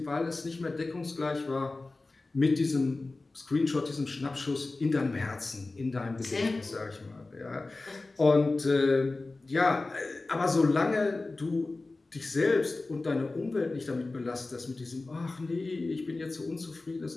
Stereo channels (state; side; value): quieter; right; 3.3 dB